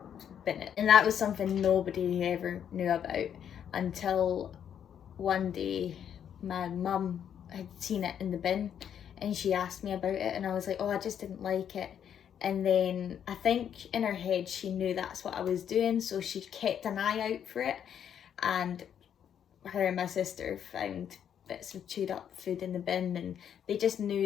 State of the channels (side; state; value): right; quieter; 8.9 dB